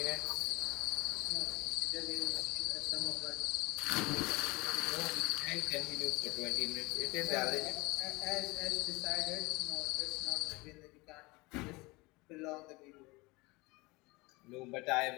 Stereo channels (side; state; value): right; quieter; 24.0 dB